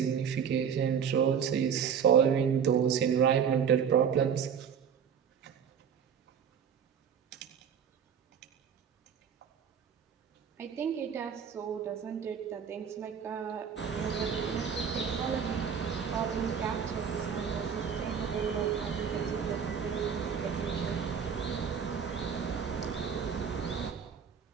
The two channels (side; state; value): left; quieter; 7.4 dB